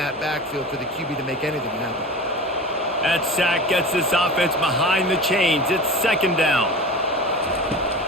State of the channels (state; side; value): normal; both; correlation 0.34